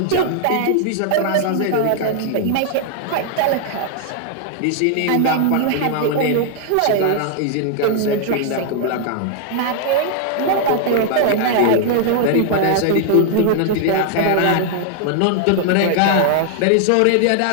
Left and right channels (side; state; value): both; different; correlation 0.00